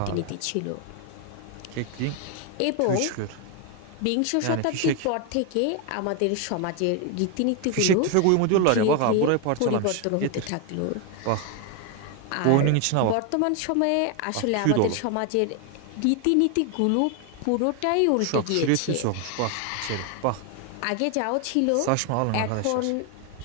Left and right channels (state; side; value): different; both; correlation 0.01